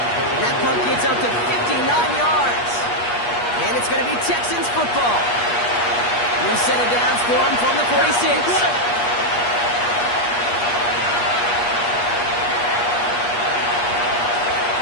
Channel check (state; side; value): late; right; 8.4 ms